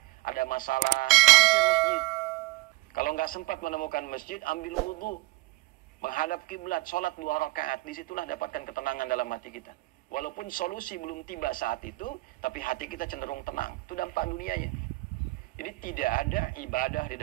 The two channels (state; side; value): quieter; left; 22.3 dB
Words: ada masalah, mampir masjid. Kalau nggak sempat menemukan masjid, ambil wudhu, menghadap kiblat, sholat 2 rakaat. Disitulah dapatkan ketenangan dalam hati kita. Walaupun solusi belum tiba saat itu, tapi hati kita cenderung tenang. Itu dampak dunianya. Jadi tidak ada ibadah di